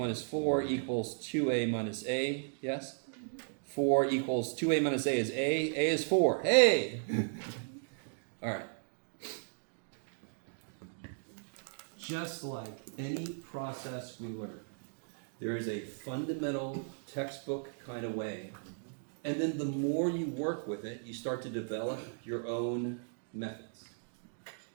4 equals 2a minus a, yes? 4 equals 2a minus a is a is 4. Hey! All right. Just like any process we learn, there is a fundamental textbook kind of way. And then the more you work with it, you start to develop your own methods.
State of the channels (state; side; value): silent; left; digital silence